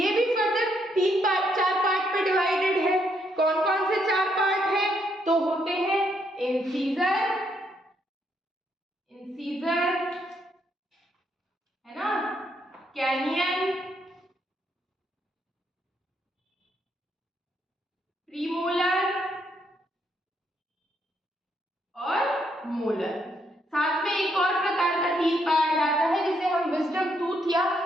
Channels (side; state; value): both; normal; correlation 0.75